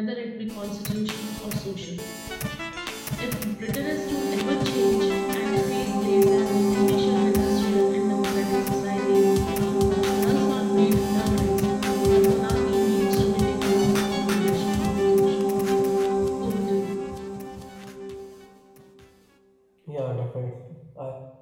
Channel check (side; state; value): both; identical; correlation 1.00